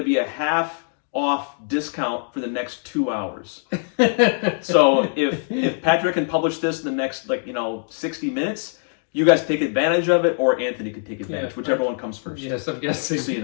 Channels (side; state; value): right; silent; 62 dB below the other